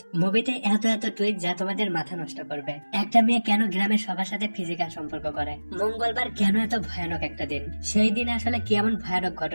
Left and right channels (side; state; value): both; inverted; correlation -1.00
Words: মুভিতে এত এত টুইট যা তোমাদের মাথা নষ্ট করবে। একটা মেয়ে কেন গ্রামের সবার সাথে ফিজিক্যাল সম্পর্ক করে, মঙ্গলবার কেন এত ভয়ানক একটা দিন, সেই দিন আসলে কি এমন ভয়ানক